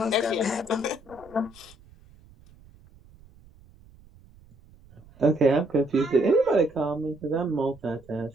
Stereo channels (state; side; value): noise; right; rumble, 25 dB below the sound